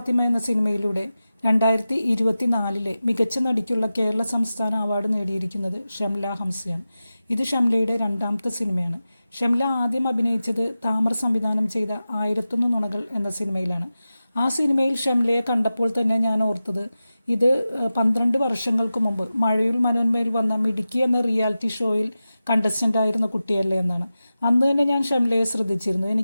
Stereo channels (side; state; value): both; inverted; correlation -0.94